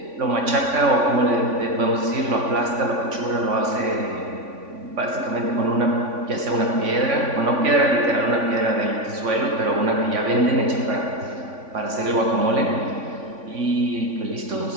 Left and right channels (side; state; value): left; late; 3.5 ms